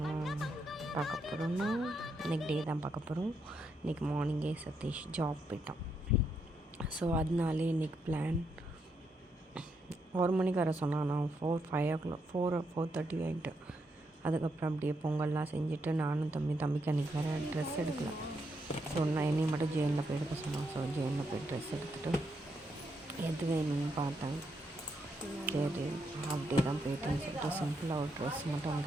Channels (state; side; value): normal; both; correlation 0.79